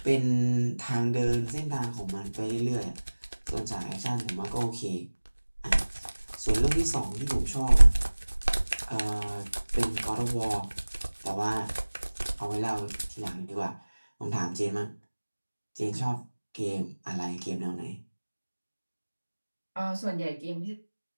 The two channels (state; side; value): inverted; both; correlation -1.00